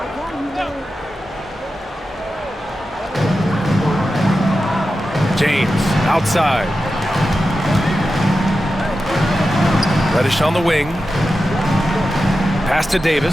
James outside. Reddish on the wing. Pass to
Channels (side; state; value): both; normal; correlation 0.91